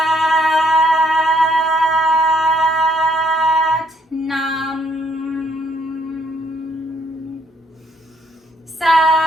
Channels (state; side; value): normal; both; correlation 0.68